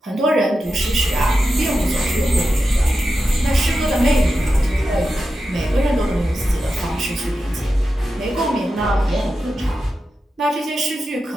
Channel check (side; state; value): both; normal; correlation 0.90